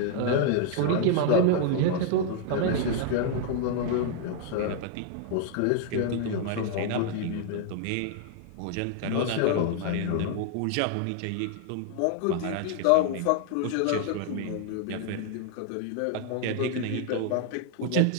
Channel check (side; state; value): both; different; correlation 0.00